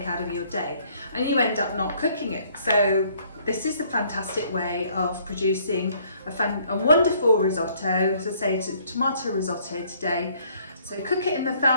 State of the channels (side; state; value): both; inverted; correlation -0.62